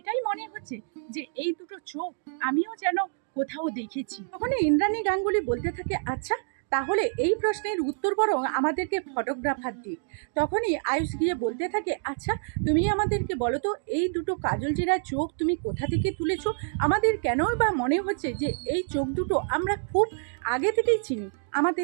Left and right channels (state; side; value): silent; left; digital silence